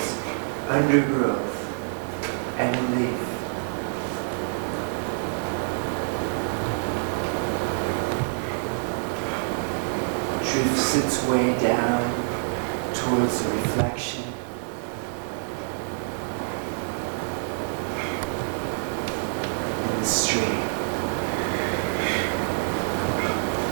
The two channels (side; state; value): left; silent; 61 dB below the other